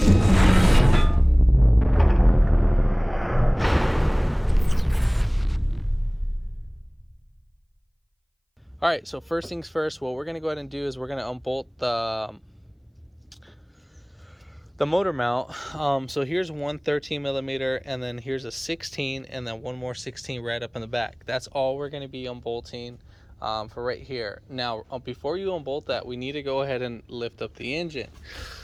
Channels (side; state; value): both; identical; correlation 1.00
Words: All right, so first things first, what we're gonna go ahead and do is we're gonna unbolt the motor mount. So here's one 13 millimeter, and then here's a 16, and then one more 16 right up in the back. That's all we're going to be unbolting for right here. Now, before you unbolt that, we need to go ahead and lift up the engine.